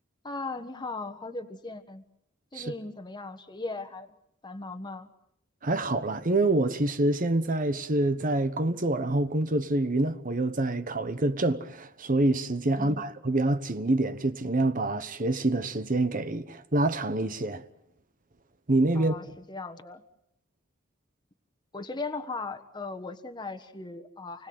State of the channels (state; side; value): normal; both; correlation 0.57